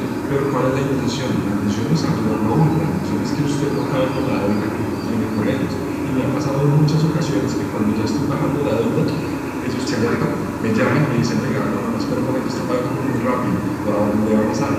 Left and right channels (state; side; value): identical; both; correlation 1.00